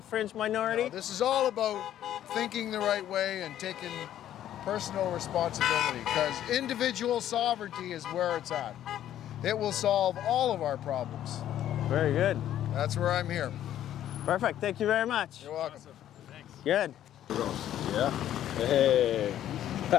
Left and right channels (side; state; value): right; quieter; 11.6 dB